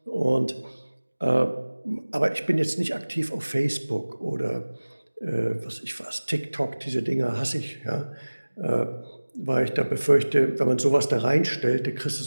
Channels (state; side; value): inverted; both; correlation -1.00